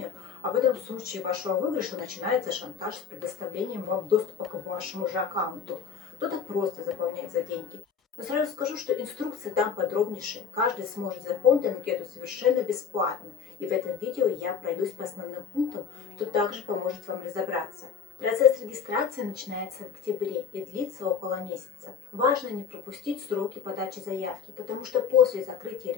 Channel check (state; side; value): quieter; right; 6.9 dB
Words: а потом в случае вашего выигрыша начинается шантаж с предоставлением вам доступа к вашему же аккаунту. Кто-то просто заполняет за деньги. Но сразу скажу, что инструкция там подробнейшая. Каждый сможет заполнить анкету совершенно бесплатно. И в этом видео я пройдусь по основным пунктам, что также поможет вам разобраться. Процесс регистрации начинается в октябре и длится около месяца. Важно не пропустить сроки подачи заявки, потому что после закрытия